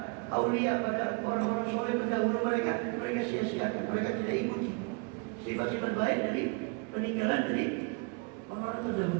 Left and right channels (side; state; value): left; quieter; 32.9 dB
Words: aulia, pada orang-orang soleh pendahulu mereka sia-siakan, mereka tidak ikuti sifat-sifat baik dari peninggalan dari orang-orang